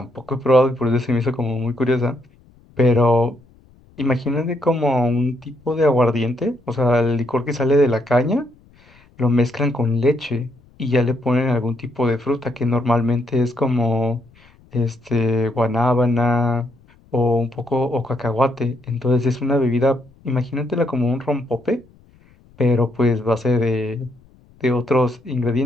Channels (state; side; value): noise; left; rumble, 29 dB below the sound